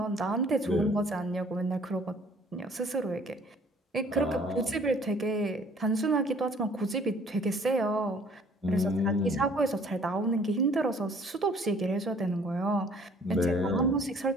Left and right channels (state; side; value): normal; both; correlation 0.56